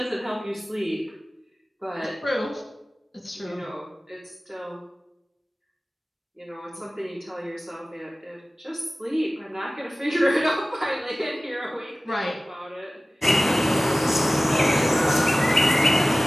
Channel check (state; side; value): normal; both; correlation 0.97